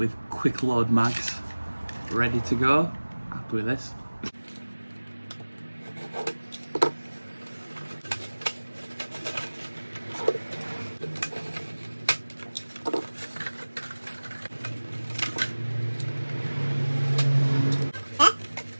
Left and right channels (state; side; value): inverted; both; correlation -1.00